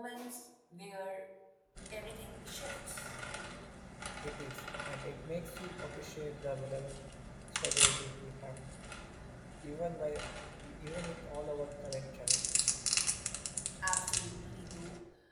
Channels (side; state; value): both; identical; correlation 1.00